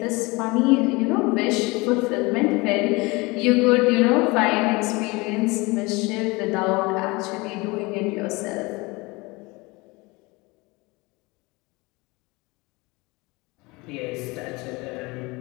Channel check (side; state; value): right; quieter; 24.5 dB